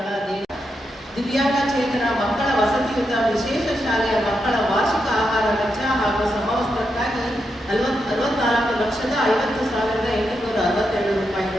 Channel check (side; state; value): both; normal; correlation 0.84